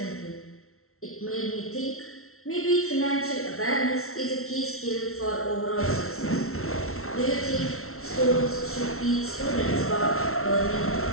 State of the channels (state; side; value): late; right; 0.63 ms